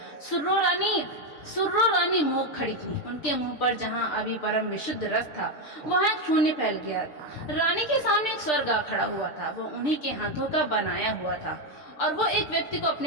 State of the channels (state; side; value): late; right; 6.7 ms